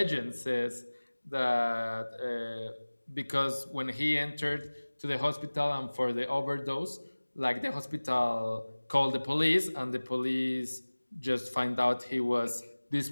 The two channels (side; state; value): both; inverted; correlation -1.00